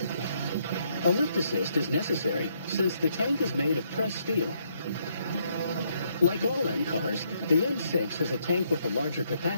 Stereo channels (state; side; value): inverted; both; correlation -0.73